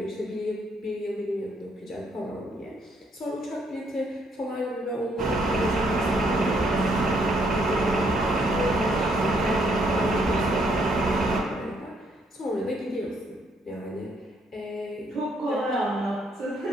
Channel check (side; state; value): both; normal; correlation 0.70